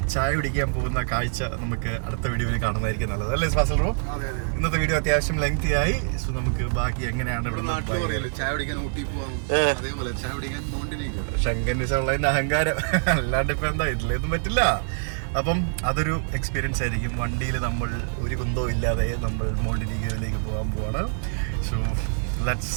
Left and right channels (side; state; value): left; silent; digital silence